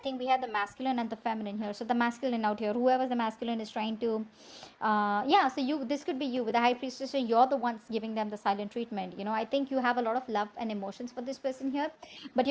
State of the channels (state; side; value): identical; both; correlation 1.00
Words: we have the masculine and the feminine here. So the masculine out here, whoever the masculine is trying to, so this could be you with the high priestess. So you're the ones giving them the silent treatment. I think you have a lot of love and emotions for this person here, but